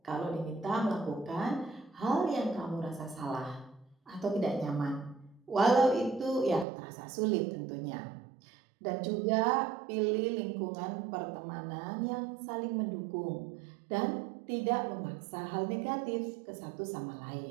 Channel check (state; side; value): drops out; left; at 6.7 s